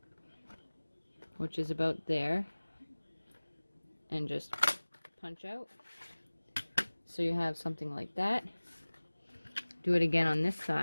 which is about there. And just punch out. So you have something like that. Do it again on this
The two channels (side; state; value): both; inverted; correlation -1.00